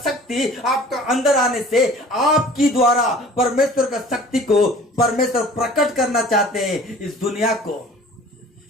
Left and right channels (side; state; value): both; normal; correlation 0.47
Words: शक्ति आपका अंदर आने से आपकी द्वारा परमेश्वर का शक्ति को परमेश्वर प्रकट करना चाहते हैं इस दुनिया को,